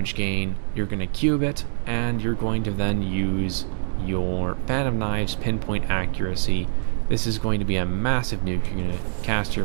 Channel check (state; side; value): silent; left; 62 dB below the other